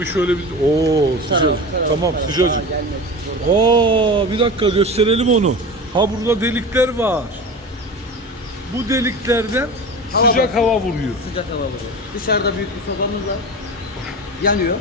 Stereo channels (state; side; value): normal; both; correlation 0.30